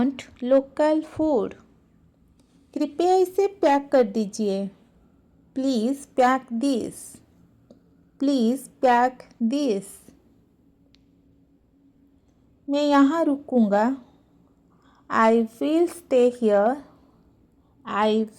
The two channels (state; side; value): identical; both; correlation 1.00